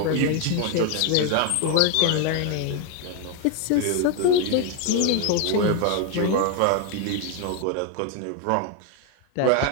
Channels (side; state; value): both; different; correlation 0.01